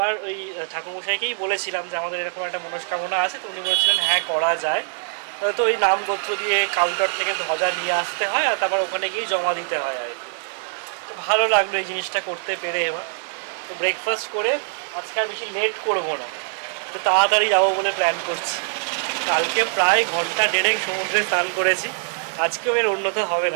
ওই ঠাকুরমশাইকেই বলেছিলাম যে আমাদের এরকম একটা মনস্কামনা আছে, তো উনি বলেছিলেন হ্যাঁ করা যায়। তো ওই নামগোত্র দিয়ে কাউন্টার থেকে ধ্বজা নিয়ে আসতে হয় আর তারপর ওখানে গিয়ে জমা দিতে হয় আর কি। তো ভালো লাগলো এই জিনিসটা করতে পেরে। এবার তো ব্রেকফাস্ট করে আজকে আর বেশি লেট করবো না, তো তাড়াতাড়ি যাবো বলে প্ল্যান করছি। কালকে প্রায় ঘন্টা দেড়েক সমুদ্রে স্নান করেছি, আজকেও এর উন্নত হবে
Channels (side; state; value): left; silent; digital silence